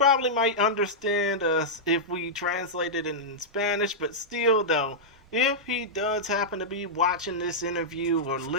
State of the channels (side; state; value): both; normal; correlation -0.09